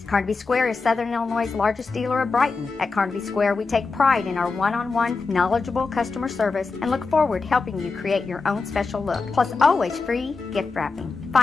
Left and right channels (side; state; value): right; quieter; 4.3 dB